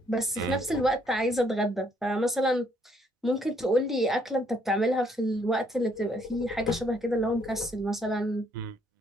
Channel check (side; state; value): both; normal; correlation 0.68